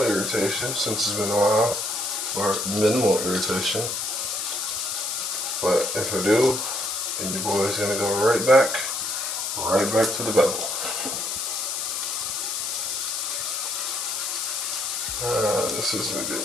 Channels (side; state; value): left; noise; hiss, 2 dB below the sound